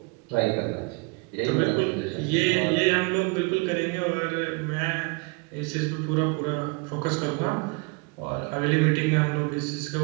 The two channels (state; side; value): quieter; left; 30.5 dB